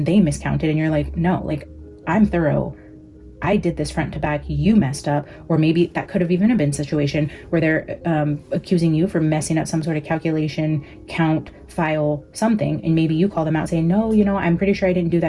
they miscounted, and you're like, no, like I'm thorough. I did this front to back, you messed up. Or maybe that could have even been a situation where they're accusing you for messing up some sort of calculation, count, file, something. And maybe you call them out saying, no, you know, I'm pretty sure I didn't do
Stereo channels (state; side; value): identical; both; correlation 1.00